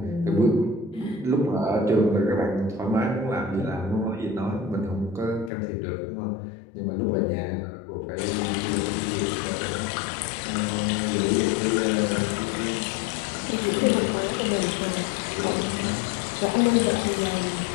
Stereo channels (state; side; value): drops out; right; at 5.5 s